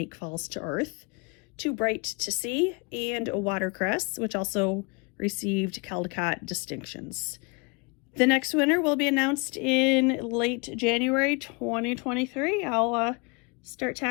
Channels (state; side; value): quieter; right; 30.6 dB